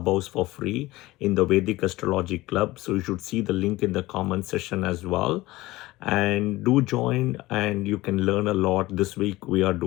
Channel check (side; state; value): right; quieter; 18.8 dB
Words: for free in the Vedic Astrology Club. So you should see the link in the comment section as well. And do join and you can learn a lot. This week we are